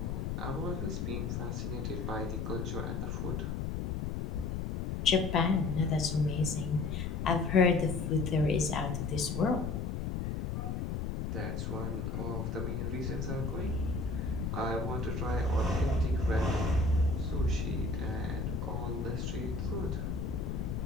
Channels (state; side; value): noise; left; rumble, 2 dB below the sound